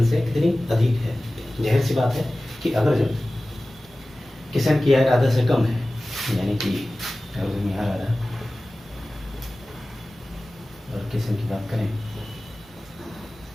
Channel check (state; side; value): normal; both; correlation 0.97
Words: से कितनी अधिक है। जाहिर सी बात है कि अगर जो किशन की आय राधा से कम है, यानी कि अगर यहाँ राधा और किशन की बात करें